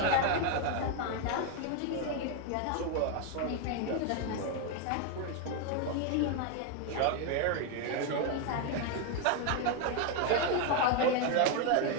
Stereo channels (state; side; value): different; both; correlation 0.01